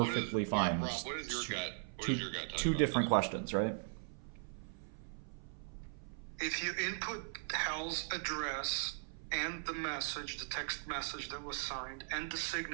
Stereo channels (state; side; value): silent; left; 52 dB below the other